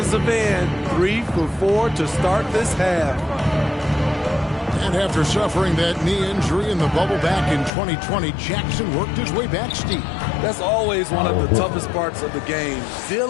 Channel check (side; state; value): right; drops out; at 7.7 s